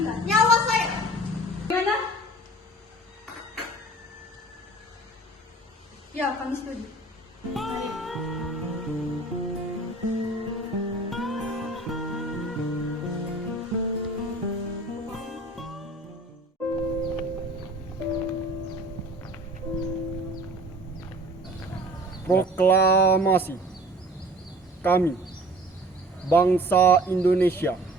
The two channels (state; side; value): normal; both; correlation 0.46